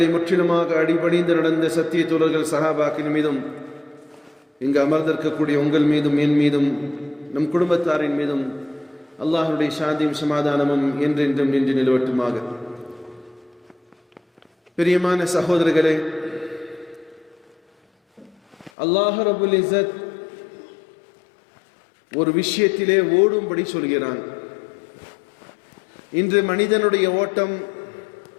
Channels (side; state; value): right; drops out; at 18.7 s